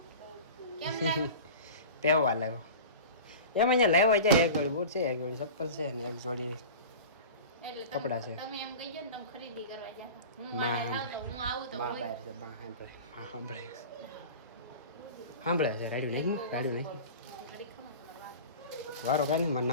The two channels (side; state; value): both; inverted; correlation -0.35